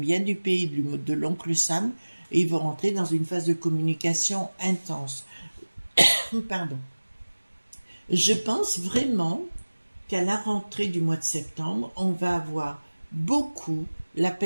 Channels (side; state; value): both; inverted; correlation -1.00